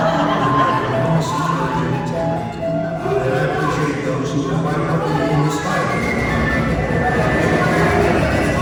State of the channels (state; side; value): identical; both; correlation 1.00